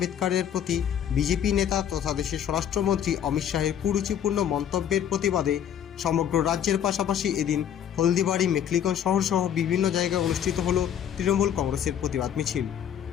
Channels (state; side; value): quieter; right; 9.4 dB